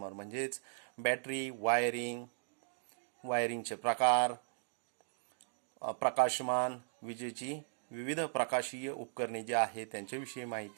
म्हणजेच बॅटरी, वायरिंगचे प्रकार, प्रकाशमान, विजेची विविध प्रकाशीय उपकरणे जे आहेत त्यांच्याविषयी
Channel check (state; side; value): silent; left; digital silence